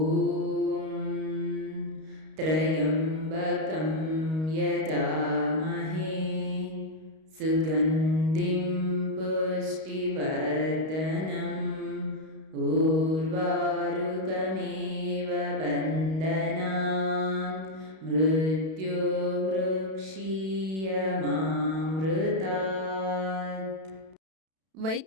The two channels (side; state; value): left; late; 32 ms